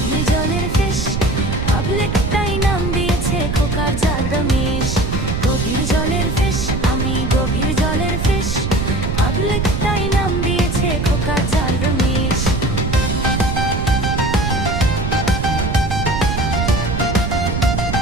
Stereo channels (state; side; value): noise; right; rumble, 2 dB below the sound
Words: জলের ফিশ, পাবলিক তাই নাম দিয়েছে খোকার জাল রমেশ। গভীর জলের ফিশ, আমি গভীর জলের ফিশ, পাবলিক তাই নাম দিয়েছে খোকার জাল রমেশ।